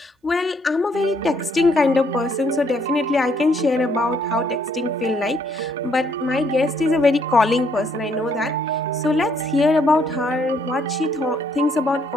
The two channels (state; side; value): normal; both; correlation 0.69